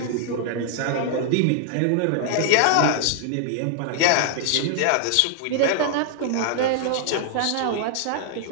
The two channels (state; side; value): different; both; correlation -0.01